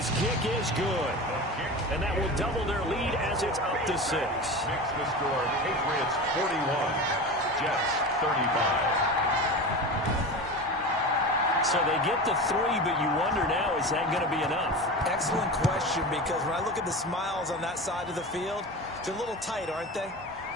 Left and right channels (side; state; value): both; normal; correlation 0.29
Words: kick is good. And that will double their lead as it's up to 6. Makes the score Patriots 41, Jets 35. So they get the 3, but you wonder now, is that going to be enough? Excellent question, because when I look at the smiles on that side of the field, they're a little tight, aren't they?